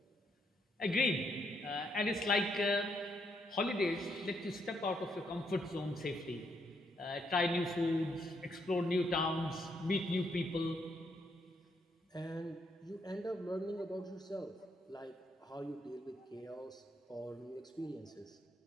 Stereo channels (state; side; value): normal; both; correlation 0.76